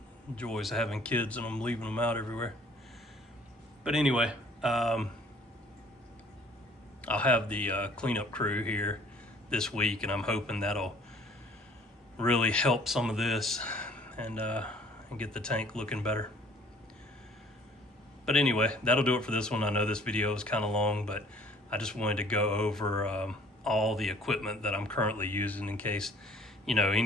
Joys of having kids and I'm leaving them out everywhere. But anyway, I'll have the cleanup crew here this week, and I'm hoping that'll really help some of this and get the tank looking better. But anyway, that'll do it for this one. I know this video is kind of long, but I just wanted to go over all the equipment that I'm currently using in case, you know,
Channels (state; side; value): normal; both; correlation 0.56